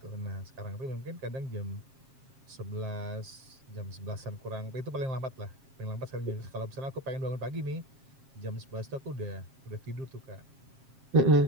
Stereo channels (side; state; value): left; late; 7.4 ms